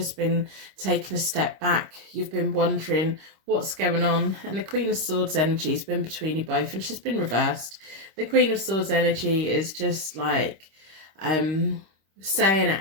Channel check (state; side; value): late; left; 26 ms